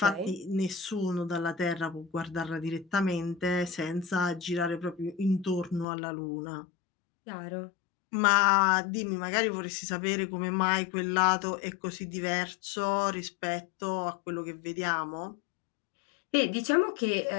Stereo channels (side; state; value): right; drops out; at 5.9 s